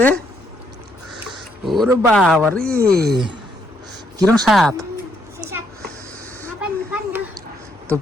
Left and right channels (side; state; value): both; normal; correlation 0.74